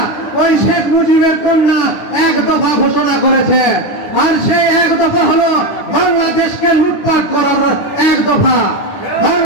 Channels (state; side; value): late; right; 9.9 ms